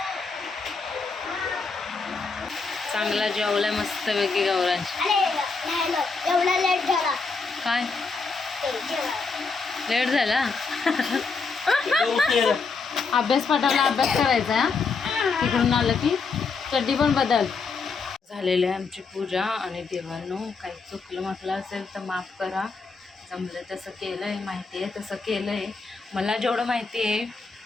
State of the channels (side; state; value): right; quieter; 4.6 dB